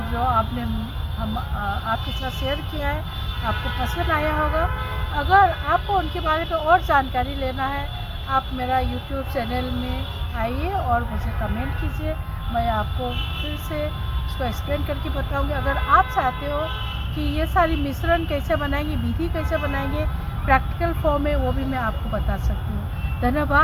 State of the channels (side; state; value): both; identical; correlation 1.00